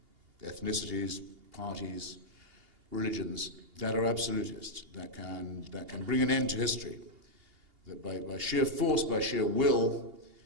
ethnicities, parties, religions that are absolutist, that can bring an end to history, that by sheer force, by sheer will,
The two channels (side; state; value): left; late; 2.8 ms